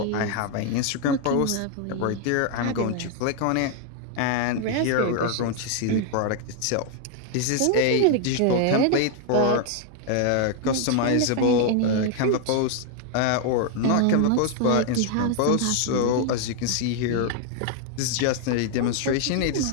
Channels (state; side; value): different; both; correlation 0.00